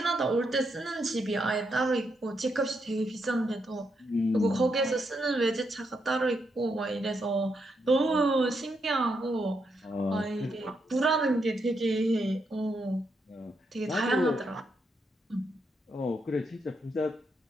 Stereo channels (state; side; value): normal; both; correlation 0.80